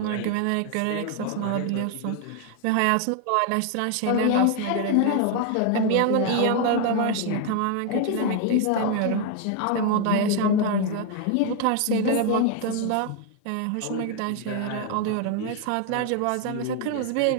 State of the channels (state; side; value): different; both; correlation 0.00